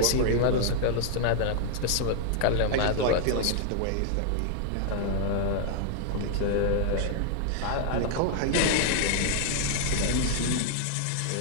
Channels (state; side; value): different; both; correlation -0.01